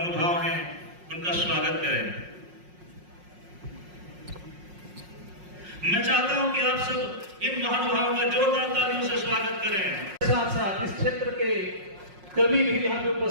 हैं उनका स्वागत करें। मैं चाहता हूं कि आप सब इन महानुभावों का जोरदार तालियों से स्वागत करें। साथ साथ इस क्षेत्र के कवि भी यहाँ पे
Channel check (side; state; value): left; late; 5.5 ms